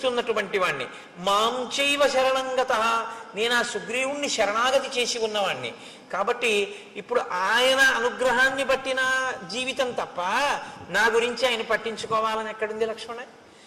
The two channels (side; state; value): both; identical; correlation 1.00